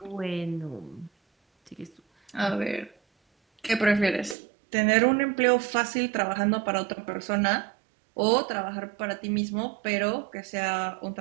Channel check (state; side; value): drops out; left; at 4.4 s